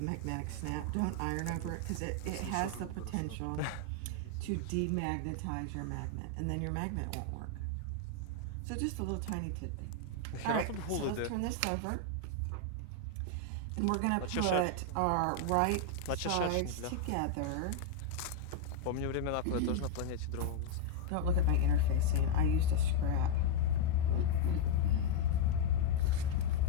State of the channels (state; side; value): different; both; correlation 0.00